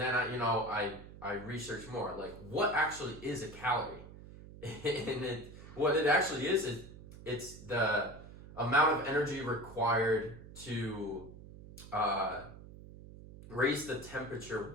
I researched more, like what actually is a calorie? And what it actually is it's the amount of energy required to raise the temperature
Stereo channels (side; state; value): right; noise; hum, 16 dB below the sound